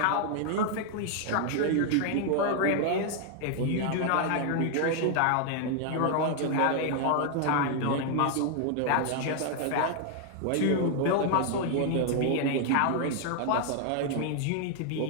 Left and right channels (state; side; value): different; both; correlation 0.00